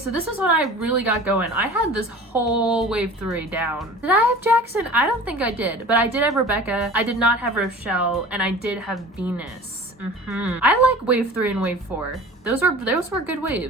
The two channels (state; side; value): normal; both; correlation 0.40